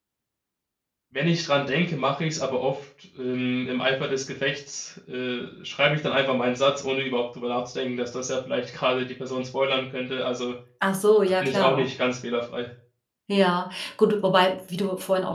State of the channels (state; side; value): identical; both; correlation 1.00